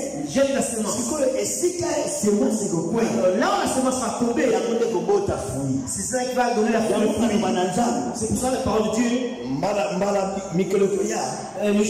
jette la semence. Là où la semence va tomber, c'est ça qui va donner la fruit. C'est pour ça les paroles de Dieu. Le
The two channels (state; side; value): identical; both; correlation 1.00